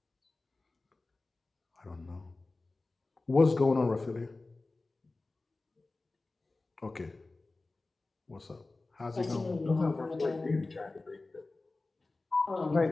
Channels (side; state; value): right; quieter; 3.3 dB